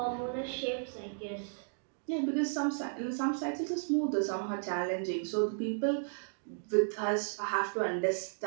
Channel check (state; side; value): silent; left; digital silence